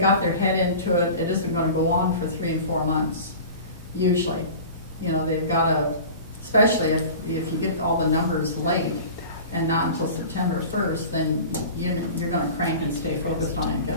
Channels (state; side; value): inverted; both; correlation -0.37